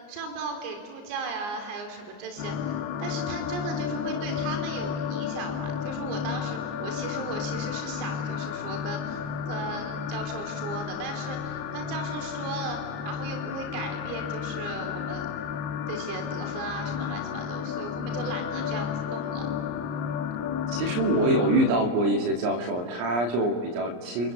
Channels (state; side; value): late; left; 34 ms